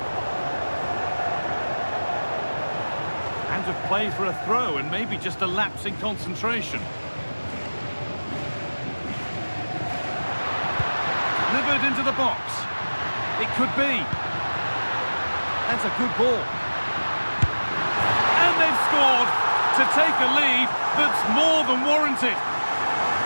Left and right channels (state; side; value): inverted; both; correlation -1.00